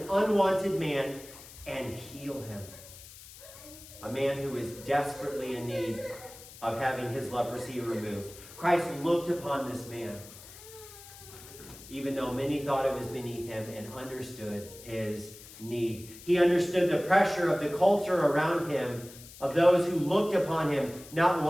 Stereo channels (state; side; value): noise; left; hiss, 17 dB below the sound